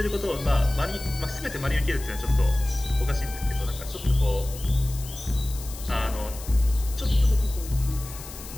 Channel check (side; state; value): left; noise; hiss, 14 dB below the sound